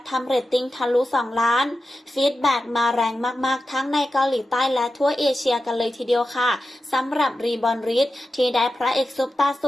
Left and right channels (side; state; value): both; normal; correlation 0.92